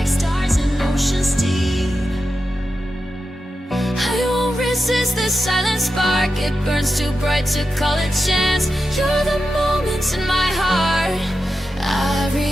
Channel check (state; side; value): normal; both; correlation 0.90